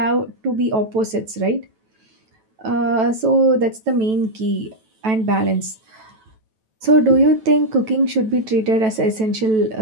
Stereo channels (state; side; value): late; left; 9.1 ms